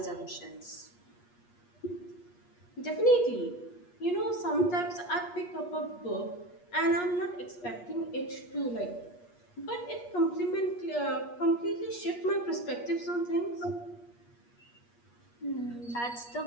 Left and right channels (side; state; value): right; late; 8.4 ms